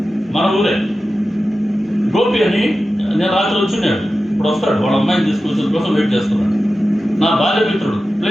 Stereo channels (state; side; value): normal; both; correlation 0.93